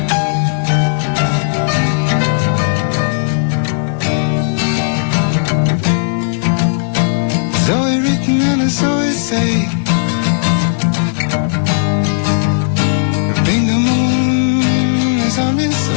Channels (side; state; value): right; silent; digital silence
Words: Zoe written and a Zoe say, think the moon is on its